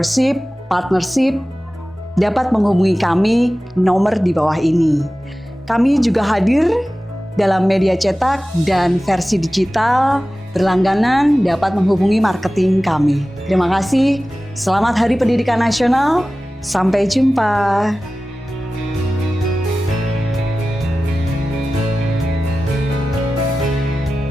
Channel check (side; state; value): both; normal; correlation 0.96